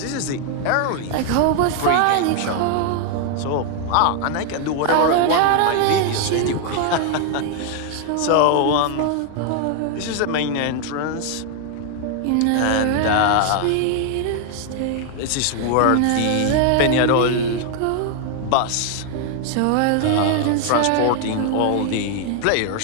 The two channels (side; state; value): both; different; correlation 0.00